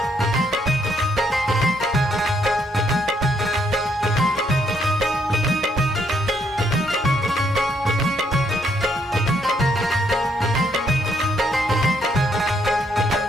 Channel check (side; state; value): both; normal; correlation 0.72